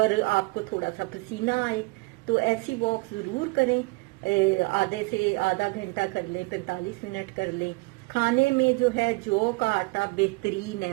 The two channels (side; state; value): left; quieter; 26.9 dB